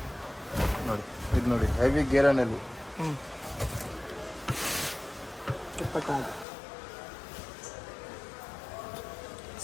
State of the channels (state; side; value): drops out; right; at 6.5 s